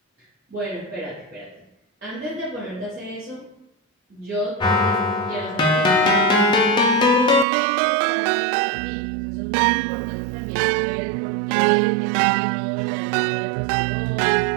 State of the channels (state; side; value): drops out; left; at 7.5 s